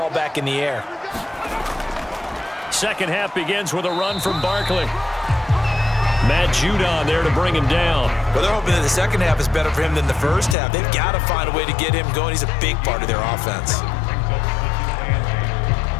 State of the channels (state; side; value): drops out; right; at 10.6 s